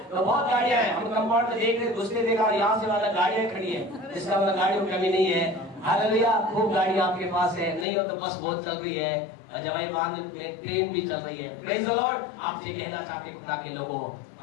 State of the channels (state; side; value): drops out; right; at 7.9 s